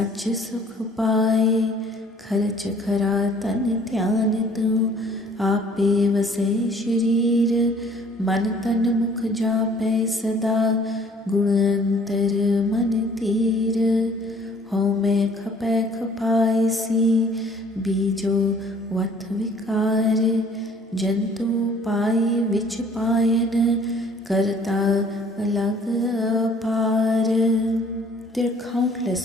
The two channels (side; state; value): both; normal; correlation 0.56